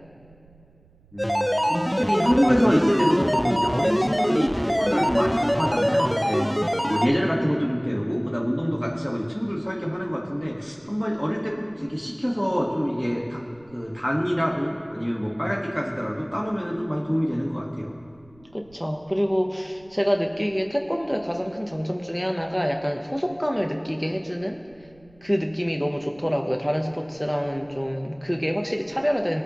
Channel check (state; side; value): noise; right; rumble, 29 dB below the sound